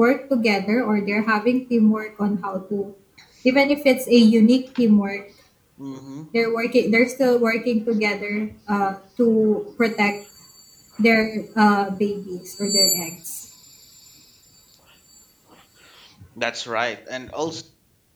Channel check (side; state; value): both; identical; correlation 1.00